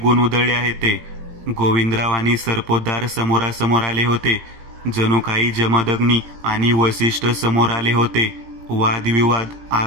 उधळले आहेत ते. गोविंदराव आणि सरपोतदार समोरासमोर आले होते. जणू काही जमदग्नी आणि वसिष्ठ समोर आले होते. वादविवाद,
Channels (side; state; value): left; late; 18 ms